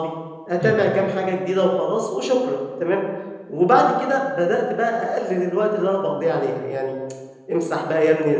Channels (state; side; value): identical; both; correlation 1.00